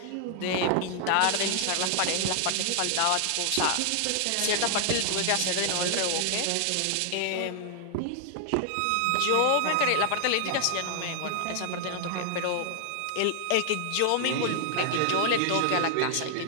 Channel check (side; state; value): both; different; correlation 0.00